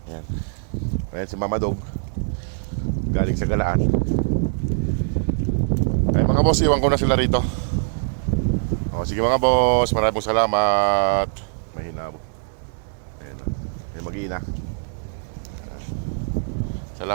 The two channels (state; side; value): silent; left; digital silence